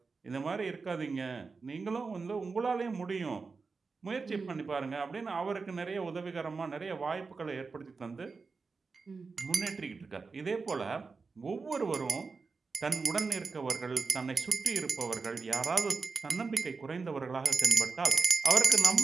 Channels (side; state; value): left; quieter; 4.5 dB